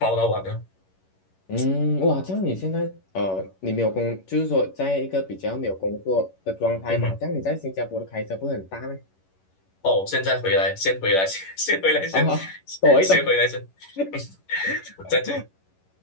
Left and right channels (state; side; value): late; right; 11 ms